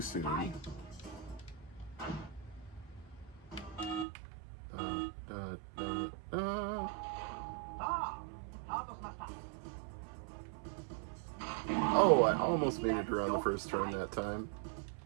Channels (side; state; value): left; drops out; at 4.0 s